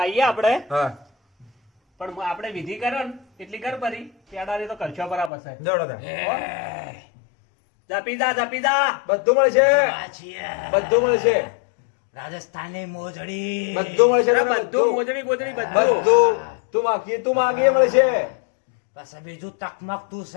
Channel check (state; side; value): drops out; right; at 5.3 s